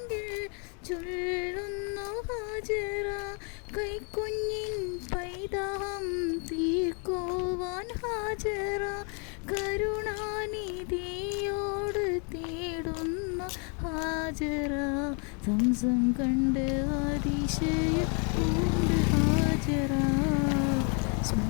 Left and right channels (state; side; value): quieter; right; 37.4 dB